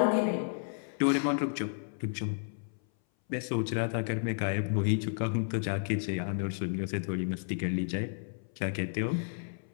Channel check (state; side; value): silent; right; 56 dB below the other